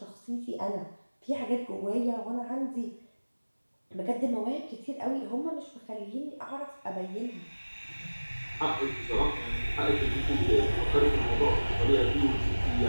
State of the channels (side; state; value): both; inverted; correlation -1.00